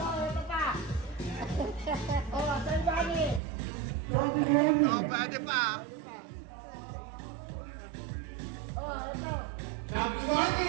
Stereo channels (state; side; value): drops out; left; at 3.4 s